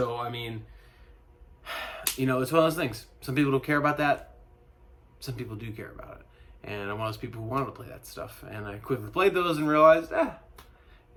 I mean, you know, it's one of those things. Some people don't care about that. Some people do care about it. And I'm one of those people who wanted to play that stuff. And I quickly played those and realized,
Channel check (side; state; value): both; identical; correlation 1.00